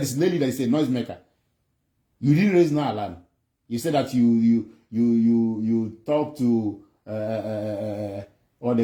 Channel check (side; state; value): both; identical; correlation 1.00